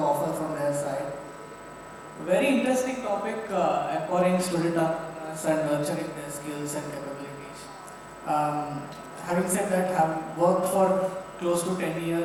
from their side. A very interesting topic, empowering student entrepreneurs and nurturing their skills and capabilities. Having said that, I have worked for close to 10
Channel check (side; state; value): both; identical; correlation 1.00